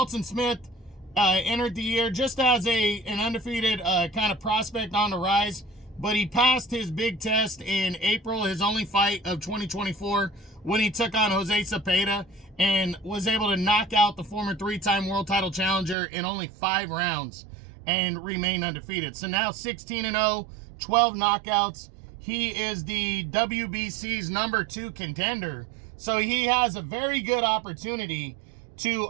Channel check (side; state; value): left; drops out; at 16.0 s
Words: Smith entered the year just as an undefeated kind of prospect on the rise, but he passed his big test in April, his only fight of 2024, when he took on Jose Cepeda and was able to knock out the former 3-time world title challenger in only 5 rounds and remain undefeated. So now 16-0, 12 knockouts. He is the WBC's number 2 contender. So he has a very good opportunity